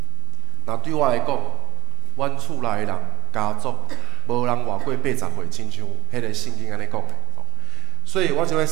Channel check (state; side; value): quieter; left; 18.3 dB